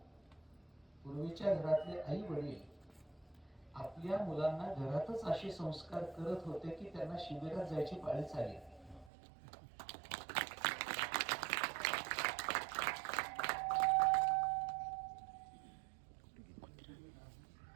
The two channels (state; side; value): drops out; left; at 9.1 s